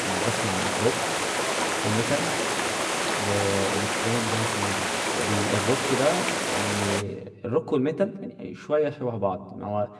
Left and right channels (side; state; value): both; identical; correlation 1.00